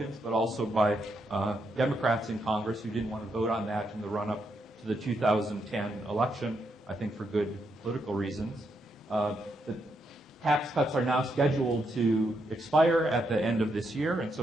but also by Democrats in Congress who didn't want to vote on that in the run-up to the 2010 election, I think for good political reasons. The tax cuts are now scheduled to expire at the end of this year, and so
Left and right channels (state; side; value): normal; both; correlation 0.79